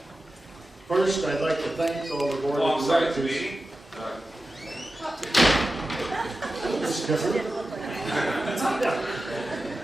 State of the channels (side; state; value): both; normal; correlation 0.93